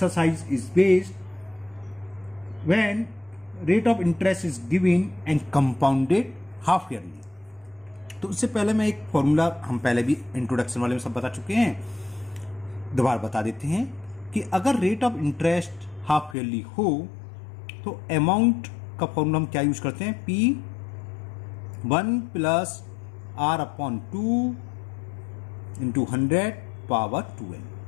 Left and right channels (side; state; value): right; drops out; at 16.4 s